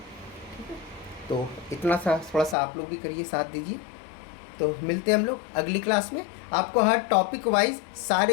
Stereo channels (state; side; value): drops out; right; at 2.6 s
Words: ठीक है, तो इतना सा थोड़ा सा आप लोग भी करिए, साथ दीजिए। तो मिलते हैं हम लोग अगली क्लास में। आपको हर टॉपिक वाइज